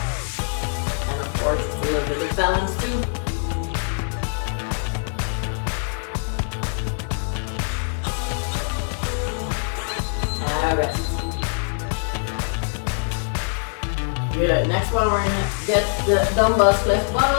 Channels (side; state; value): right; silent; 63 dB below the other